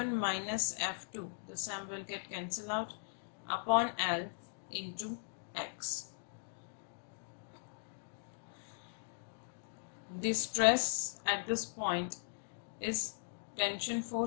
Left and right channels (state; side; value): silent; right; digital silence